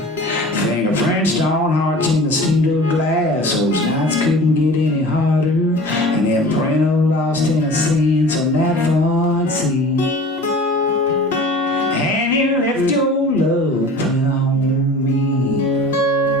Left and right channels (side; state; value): both; normal; correlation 0.41